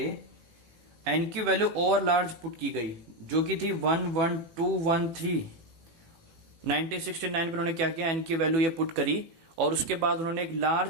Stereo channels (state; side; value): late; left; 18 ms